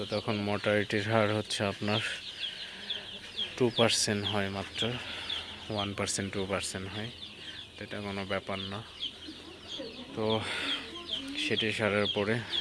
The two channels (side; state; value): both; identical; correlation 1.00